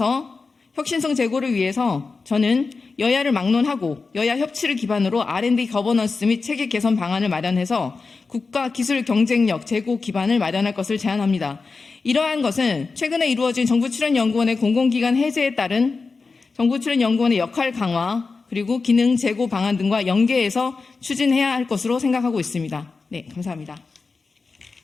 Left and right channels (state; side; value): quieter; right; 4.3 dB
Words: 혁신성 제고를 위해서 저는 여야를 막론하고 여야 협치를 기반으로 R&D 거버넌스 및 체계 개선 방안을 마련해서 국가 기술 경쟁력 제고 기반을 마련할 것을 제안합니다. 이러한 것은 최근에 이루어진 정부 출연 연구원의 공공기관 해제에 따른 정부 출연 연구원의 역할 강화 그리고 기능 제고 방안 등과 연계해서 추진해야 할 것으로 생각하고 있습니다. 네, 감사합니다.